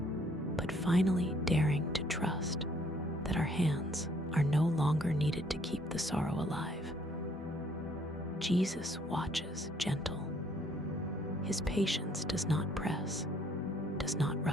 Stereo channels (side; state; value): both; normal; correlation 0.64